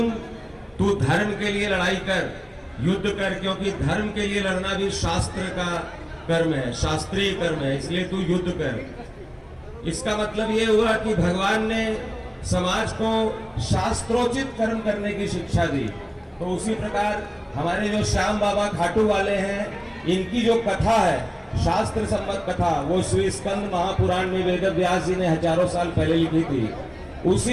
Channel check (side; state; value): both; identical; correlation 1.00